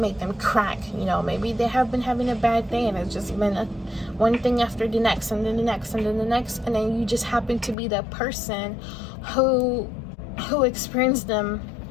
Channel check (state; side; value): drops out; right; at 7.8 s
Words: them crack. You know, maybe they have been having a bad day and it's just been one thing after the next, and then the next, and then the next, and then you just happen to be that person who experienced them